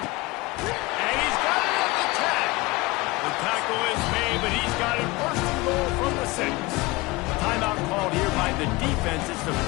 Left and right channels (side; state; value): right; quieter; 22.4 dB